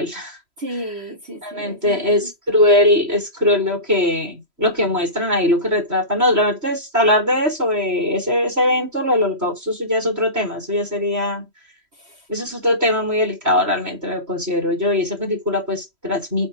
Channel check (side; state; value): left; late; 3.1 ms